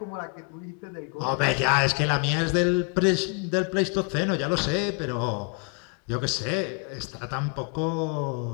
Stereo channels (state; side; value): quieter; right; 35.9 dB